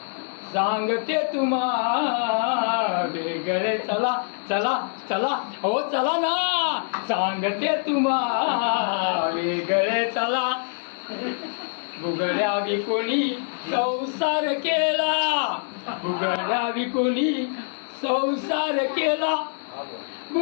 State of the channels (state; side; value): silent; right; digital silence